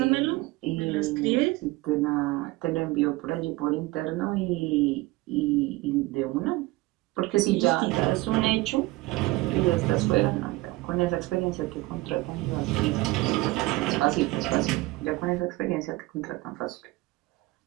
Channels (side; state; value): left; quieter; 20.5 dB